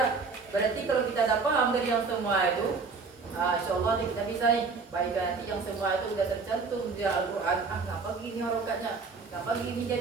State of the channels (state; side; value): quieter; left; 4.6 dB